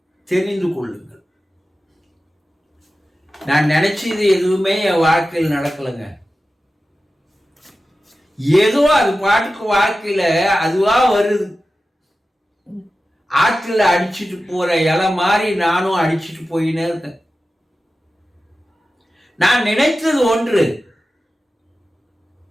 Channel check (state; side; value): normal; both; correlation 0.94